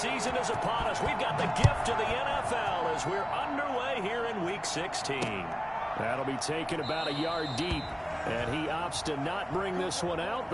is upon us. We've got the gift of the NFL as we're underway here in Week 16. That'll be taken about a yard deep, and he opts to not bring this one out.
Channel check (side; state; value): both; identical; correlation 1.00